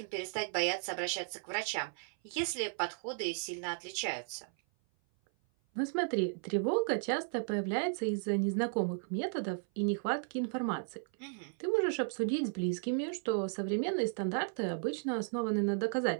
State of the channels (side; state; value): left; silent; 55 dB below the other